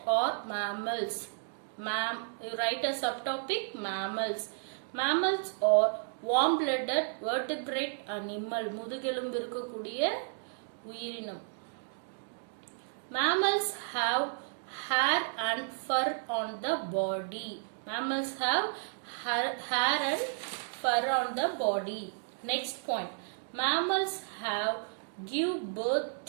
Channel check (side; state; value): left; silent; digital silence